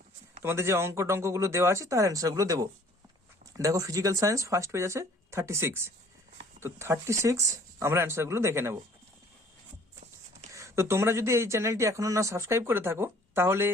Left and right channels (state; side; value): normal; both; correlation 0.55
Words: তোমাদের যে টঙ্কগুলো দেওয়া আছে তার অ্যান্সারগুলো দেবো। দেখো, ফিজিক্যাল সায়েন্স ফার্স্ট পেজ আছে 36, তো 36 আমরা অ্যান্সারগুলো দেখে নেব। তো তোমরা যদি এই চ্যানেলটি এখনো না সাবস্ক্রাইব করে থাকো, তাহলে